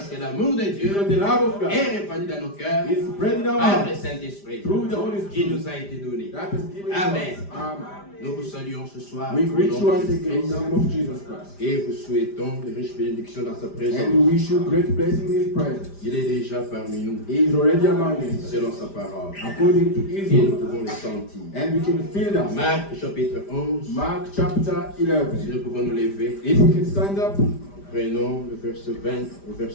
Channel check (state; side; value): late; right; 5.0 ms